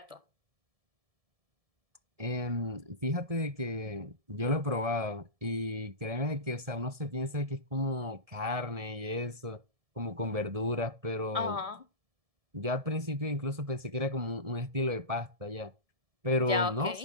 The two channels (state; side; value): late; left; 1.7 ms